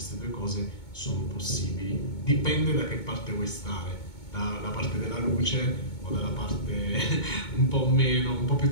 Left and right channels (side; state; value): right; late; 2.2 ms